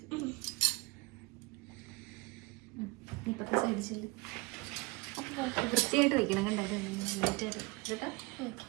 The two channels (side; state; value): left; quieter; 24.9 dB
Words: ഇപ്പത്തെ സൈഡ് ചെല്ല് വൃത്തിയായിട്ട് വയ്ക്കണം. കണ്ടോ നീറ്റായിട്ട് കേട്ടോ.